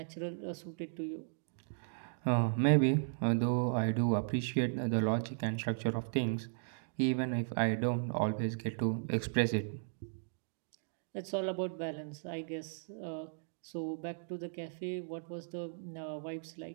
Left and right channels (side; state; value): left; silent; digital silence